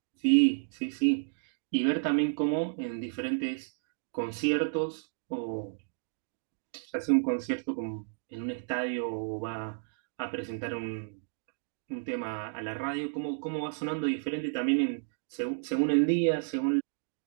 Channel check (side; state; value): left; silent; digital silence